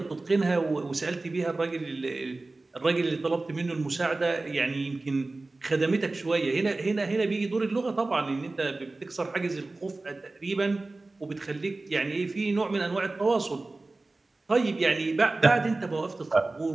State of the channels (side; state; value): left; quieter; 3.2 dB